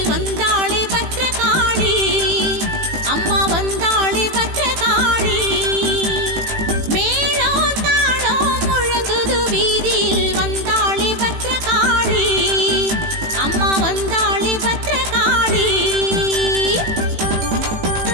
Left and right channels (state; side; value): late; left; 18 ms